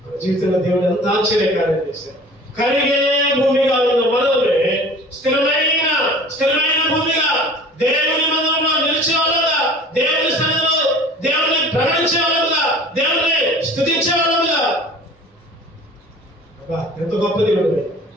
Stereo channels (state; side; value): normal; both; correlation 0.45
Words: మన జీవితంలో దేవుడు ఎంత ఆశ్చర్యకార్యం చేశారు. కరిగే భూమిగా ఉన్న మనమే స్థిరమైన భూమిగా దేవుని మందిరంలో నిలిచే వాళ్ళగా, దేవుని సన్నిధిలో దేవుని ప్రకటించే వాళ్ళగా, దేవుని స్తుతించే వాళ్ళగా. ఎంత గొప్ప దేవుడు!